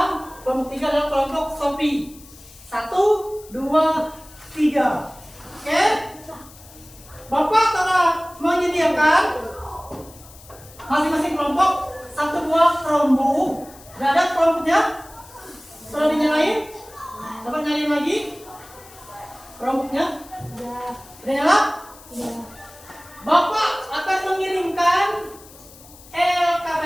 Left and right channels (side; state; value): left; noise; hiss, 21 dB below the sound